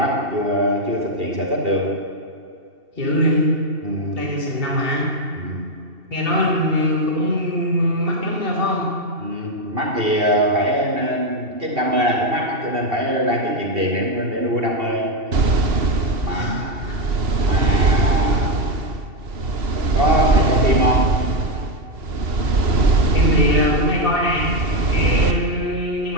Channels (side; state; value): left; late; 2.7 ms